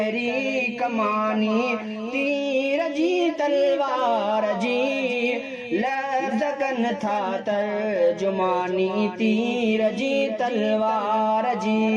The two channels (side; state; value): both; identical; correlation 1.00